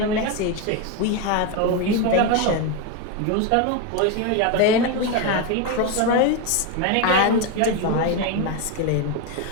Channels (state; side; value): different; both; correlation 0.03